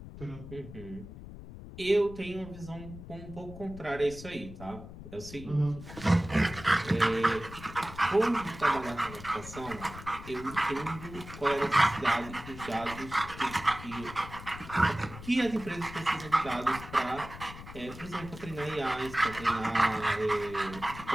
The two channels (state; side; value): noise; left; rumble, 13 dB below the sound